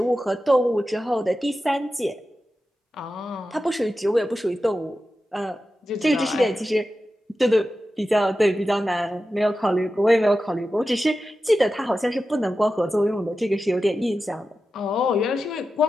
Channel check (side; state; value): both; normal; correlation 0.92